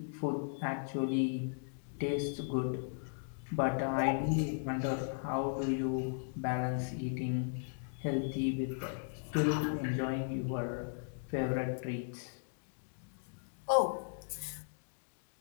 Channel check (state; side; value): silent; right; digital silence